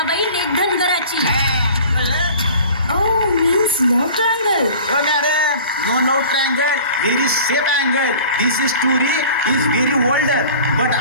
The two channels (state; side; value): inverted; both; correlation -0.43